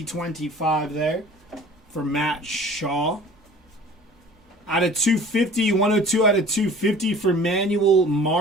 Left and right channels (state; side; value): normal; both; correlation 0.46